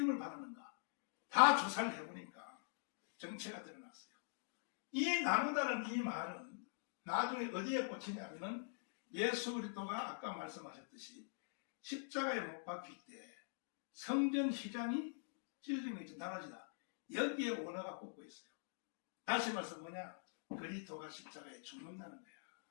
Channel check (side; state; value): right; silent; digital silence